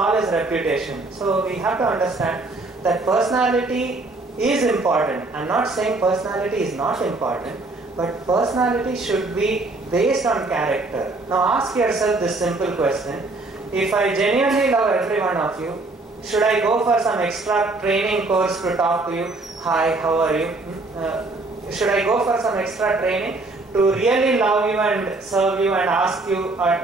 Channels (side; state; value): left; quieter; 3.2 dB